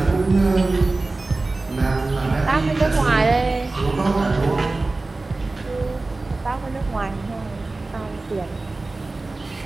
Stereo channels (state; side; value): quieter; left; 3.3 dB